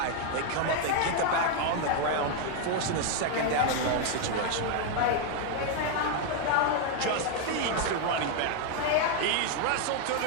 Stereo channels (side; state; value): both; different; correlation 0.01